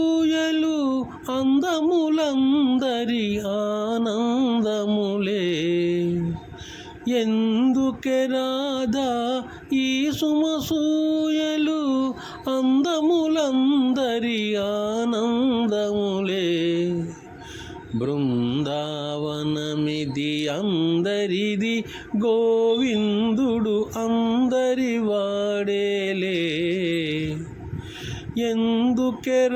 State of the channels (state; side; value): identical; both; correlation 1.00